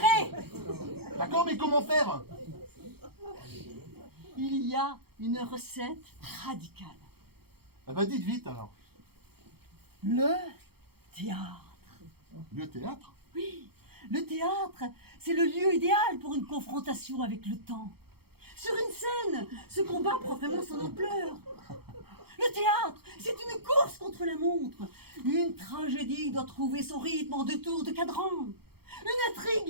D'accord, mais comment faire? Il y a une recette radicale. Eh ben dites vite alors. Le théâtre. Le théâtre? Oui, le théâtre, c'est le lieu idéal pour une confrontation avec le temps. Sur une scène, ce combat prend vraiment son ampleur. Le théâtre, c'est une course contre la montre. Une tragédie doit trouver son rythme en 2 tours de cadran. Une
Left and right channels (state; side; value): late; left; 0.96 ms